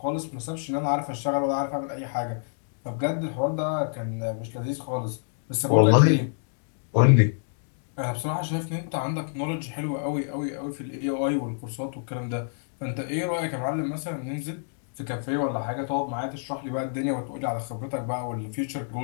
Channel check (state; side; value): silent; right; digital silence